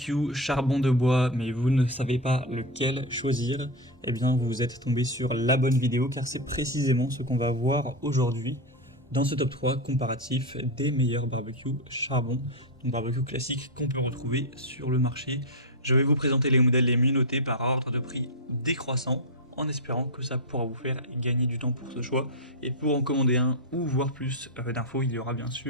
charbon de bois, mais vous ne savez pas lequel choisir, eh bien vous êtes tombé sur la bonne vidéo car c'est précisément ce qu'on va voir aujourd'hui dans ce top 3 comparatif des meilleurs barbecues charbon, donc barbecue classique qu'on peut retrouver sur le marché. Je vais vous présenter les modèles les mieux notés par ordre de prix décroissant, en espérant que ça pourra vous faire gagner du temps pour ce choix. Et pour en commander un ou voir plus d'infos, il y aura bien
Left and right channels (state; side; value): normal; both; correlation 0.08